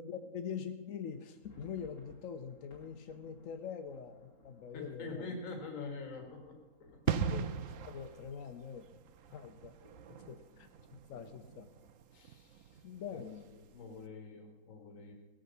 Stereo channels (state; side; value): late; right; 3.8 ms